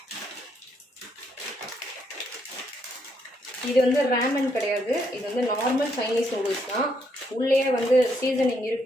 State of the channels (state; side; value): normal; both; correlation 0.74